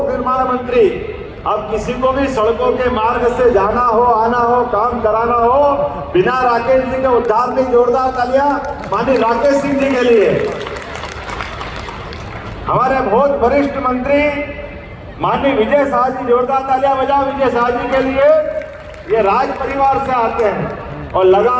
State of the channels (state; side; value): identical; both; correlation 1.00